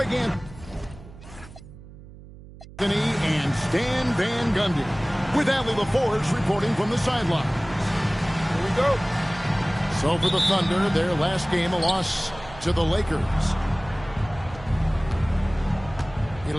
Anthony and Stan Van Gundy, with Allie LaForge reporting from the sidelines. Here we go. So for the Thunder, their last game, a loss to the Lakers.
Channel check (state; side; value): noise; right; hum, 18 dB below the sound